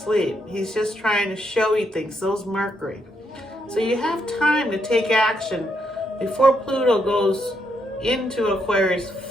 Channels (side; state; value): both; normal; correlation 0.78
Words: He's just trying to show you things. So's Mercury. So you have time to take action before Pluto goes into Aquarius